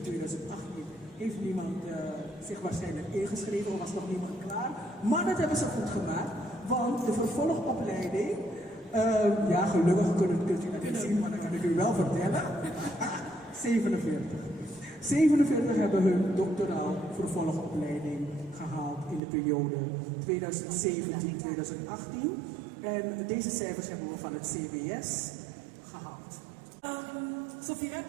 2018 heeft niemand zich waarschijnlijk ingeschreven, of was nog niemand klaar. Maar dat hebben ze goed gemaakt, want de vervolgopleiding, ja gelukkig kunt u dat niet zien, maar dat kan ik u wel vertellen, 47. 47 hebben hun doctoraal vervolgopleiding gehaald in de periode 2017-2018. En deze cijfers hebben we van het CBS gehaald. Sophie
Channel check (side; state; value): left; drops out; at 19.2 s